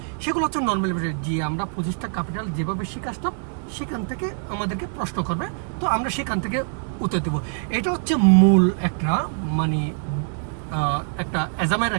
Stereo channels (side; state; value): left; silent; digital silence